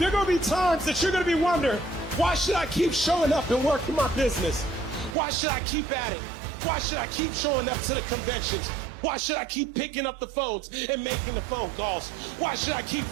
are going to be times that you're going to be wondering, why should I keep showing up and working my business? Why should I keep at it? Why should I keep showing up to the conventions? Why should I keep picking up the phones and making the phone calls? Why should I keep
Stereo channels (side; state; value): left; drops out; at 5.2 s